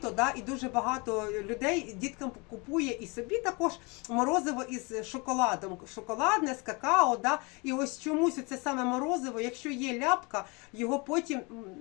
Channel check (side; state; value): right; quieter; 28.7 dB